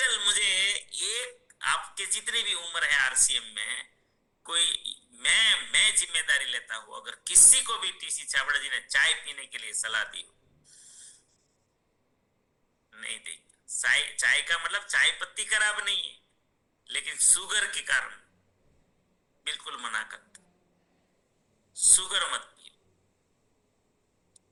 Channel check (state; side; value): identical; both; correlation 1.00